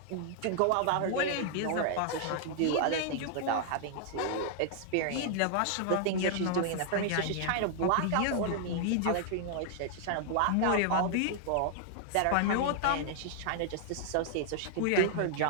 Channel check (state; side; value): different; both; correlation -0.01